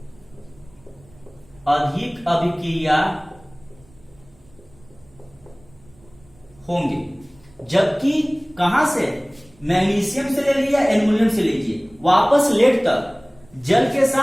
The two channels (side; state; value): right; noise; rumble, 28 dB below the sound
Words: अधिक अभिक्रिया होंगे। जबकि कहां से, मैग्नीशियम से ले लिया, एल्युमिनियम से लीजिए, वापस लेड तक जल के